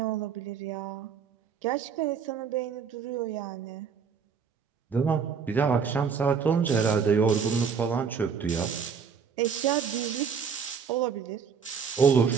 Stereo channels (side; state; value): left; quieter; 6.3 dB